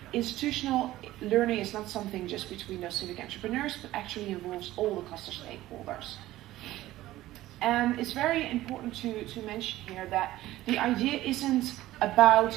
institutional learning is not something just between those civic entrepreneurs, but actually involves all the cluster stakeholders. And it's very important to mention here that the idea isn't about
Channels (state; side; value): quieter; left; 15.8 dB